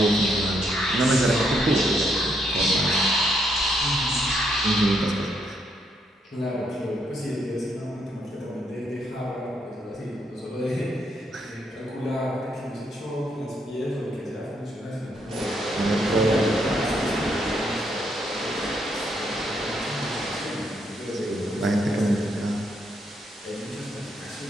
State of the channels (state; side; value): normal; both; correlation 0.75